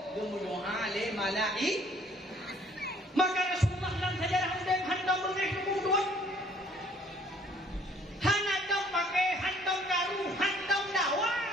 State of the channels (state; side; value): normal; both; correlation 0.59